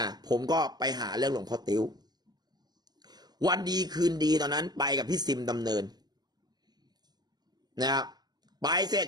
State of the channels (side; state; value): left; late; 0.20 ms